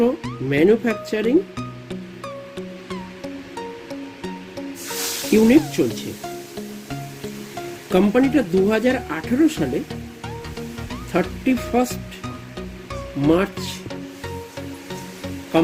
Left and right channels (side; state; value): both; identical; correlation 1.00